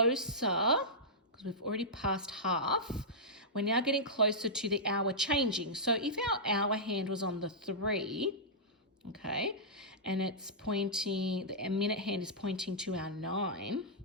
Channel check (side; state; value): both; normal; correlation -0.13